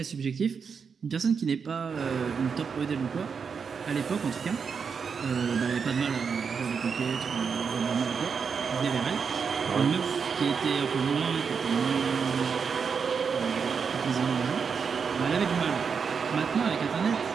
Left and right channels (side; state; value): left; quieter; 6.0 dB